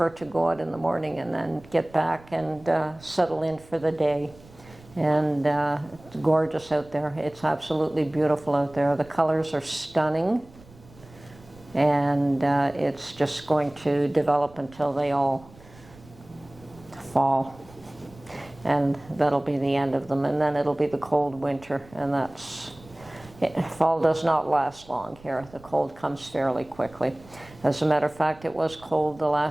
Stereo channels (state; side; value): noise; right; rumble, 23 dB below the sound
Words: to go out in the morning and then get back and settle in for the day. And it's gorgeous out there. It's absolutely beautiful out there. The colors are stunning, and it's just going to develop until they all fall. And that'll be the end of them, and then it'll be the cold winter, and fall does not last long here. The cold comes fairly quickly. As a matter of fact, it was cold the